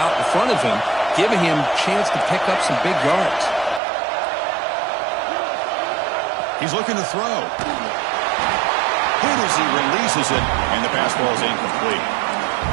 in front of him, giving him a chance to pick up some big yards. He's looking to throw. Hit as he releases it, and the pass ball is incomplete.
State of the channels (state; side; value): drops out; left; at 3.8 s